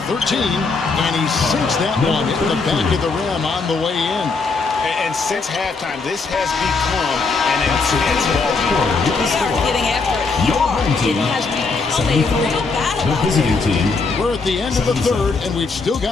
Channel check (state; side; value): quieter; right; 4.2 dB